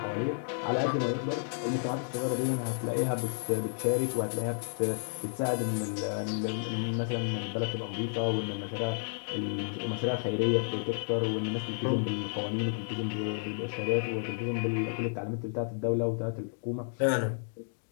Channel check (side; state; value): right; silent; digital silence